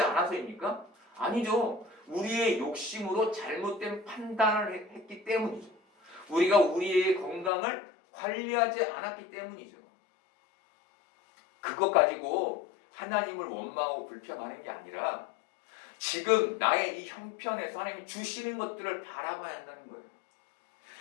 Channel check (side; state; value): right; drops out; at 7.5 s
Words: 않아서입니까? 아니죠. 우리의 욕심으로 잘못된 판단을 했기 때문이죠. 우리가 우리의 건강을 관리하지 않았기 때문이죠. 그것 가지고 하나님을 원망하고 불평하는 게 아니라 지금 나의 이 형편에서 하나님이 주시는 것들을 바라봐야 한다는 거예요.